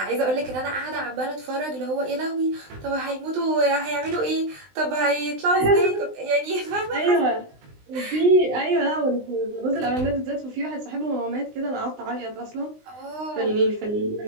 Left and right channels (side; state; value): left; late; 20 ms